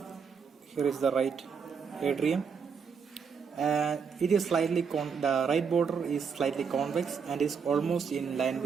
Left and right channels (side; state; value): left; quieter; 6.2 dB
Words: Here is the right atrium, and it is slightly the right border is slightly convex and is almost in line